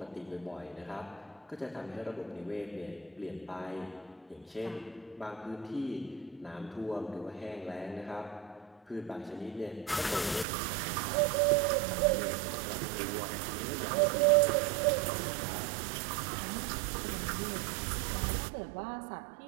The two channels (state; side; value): drops out; left; at 10.5 s